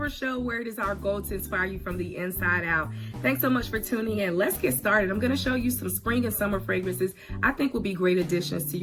Show, where it is our goal to inspire you from the inside out. Thanks so much for tuning in. Let's get started. I'm going to show you some spring and summer fragrances I think will be great additions to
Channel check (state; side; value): identical; both; correlation 1.00